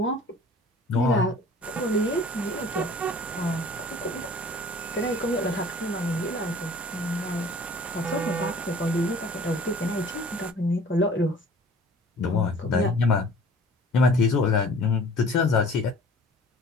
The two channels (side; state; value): both; normal; correlation 0.48